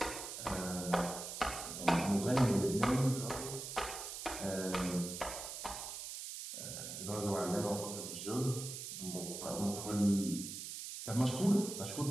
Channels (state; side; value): noise; right; hiss, 7 dB below the sound